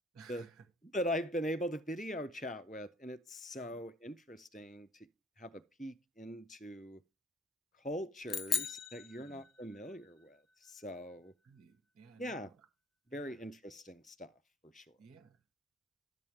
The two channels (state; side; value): normal; both; correlation 0.56